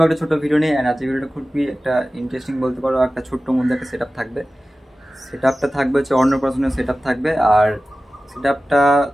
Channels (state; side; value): normal; both; correlation 0.96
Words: একটা ছোট ভিডিও নিয়ে। এন্ড আজকের ভিডিওটা খুবই একটা ইন্টারেস্টিং বলতে পারো। একটা ছোট্ট মধ্যে একটা সেটআপ থাকবে। সেটআপটা থাকবে হচ্ছে অন্নপ্রাশনের সেটআপ থাকবে। আর সেটআপটা